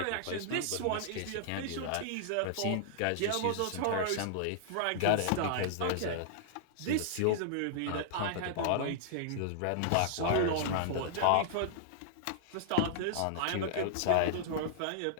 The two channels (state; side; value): different; both; correlation -0.01